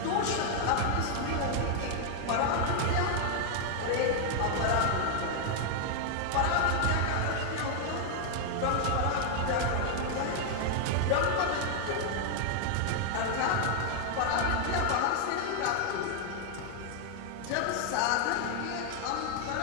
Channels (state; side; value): different; both; correlation 0.00